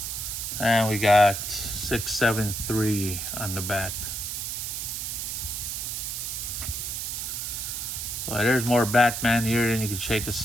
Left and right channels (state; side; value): noise; right; hiss, 4 dB below the sound